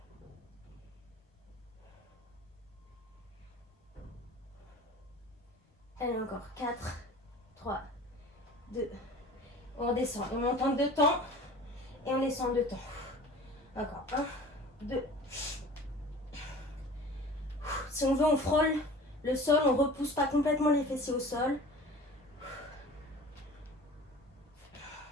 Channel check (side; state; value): both; normal; correlation 0.42